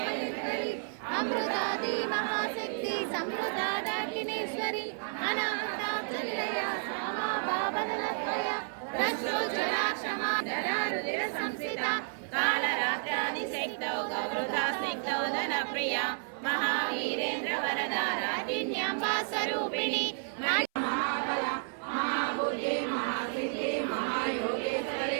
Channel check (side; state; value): left; silent; 57 dB below the other